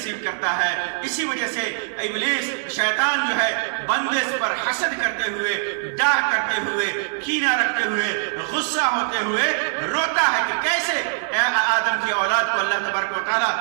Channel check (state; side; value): silent; left; 64 dB below the other